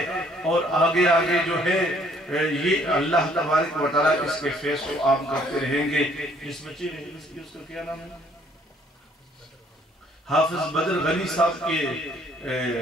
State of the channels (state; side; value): normal; both; correlation 0.63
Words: اور آگے آگے جو ہے یہ اللہ تبارک و تعالیٰ اس کے فیض کو عام کرتے رہیں گے۔ جس بچے نے اس کا کیا نام ہے؟ حافظ بدر غنی صاحب کے